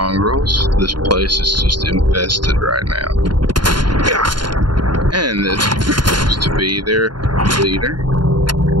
This place is just infested right now. And this seems to be their leader.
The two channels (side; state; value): left; late; 0.72 ms